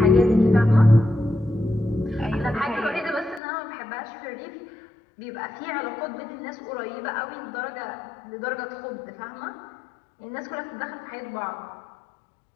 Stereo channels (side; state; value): right; drops out; at 3.4 s